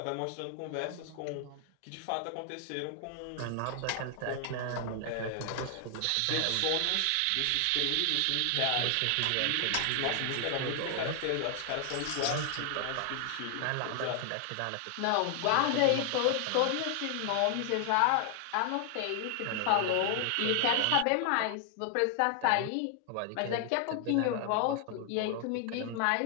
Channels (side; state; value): both; different; correlation 0.00